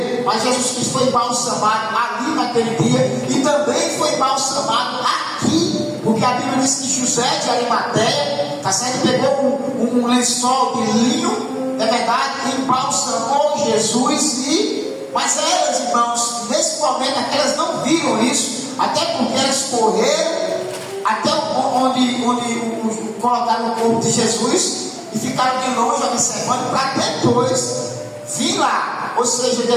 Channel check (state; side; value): identical; both; correlation 1.00